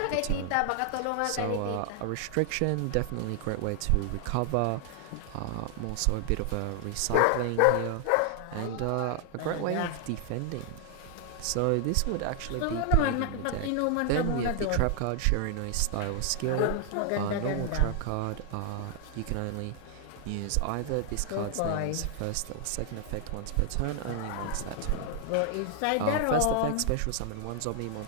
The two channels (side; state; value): both; different; correlation 0.00